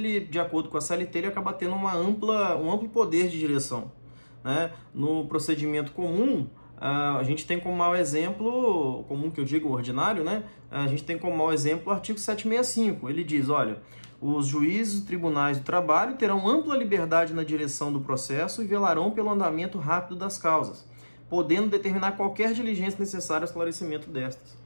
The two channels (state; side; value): inverted; both; correlation -1.00